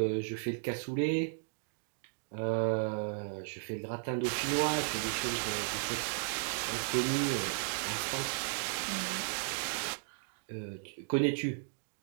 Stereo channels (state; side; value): silent; left; digital silence